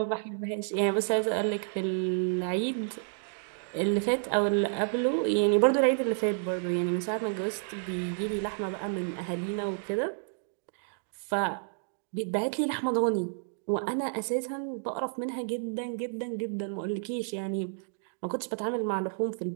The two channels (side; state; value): left; silent; digital silence